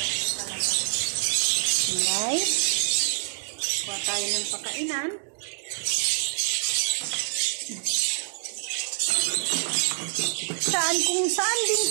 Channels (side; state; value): left; silent; digital silence